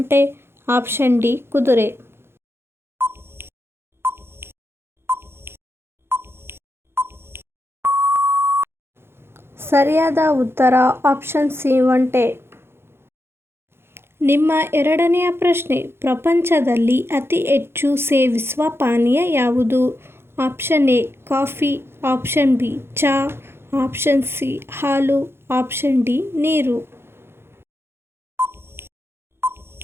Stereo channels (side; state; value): left; late; 0.12 ms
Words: ಆಪ್ಷನ್ ಡಿ ಕುದುರೆ. ಸರಿಯಾದ ಉತ್ತರ ಆಪ್ಷನ್ ಸಿ ಒಂಟೆ. ನಿಮ್ಮ ಎರಡನೆಯ ಪ್ರಶ್ನೆ, ಪ್ರಪಂಚದಲ್ಲಿ ಅತಿ ಹೆಚ್ಚು ಸೇವಿಸುವ ಪಾನೀಯ ಯಾವುದು? Option A coffee, option B ಚಹಾ, ಆಪ್ಷನ್ ಸಿ ಹಾಲು, ಆಪ್ಷನ್ ಡಿ ನೀರು.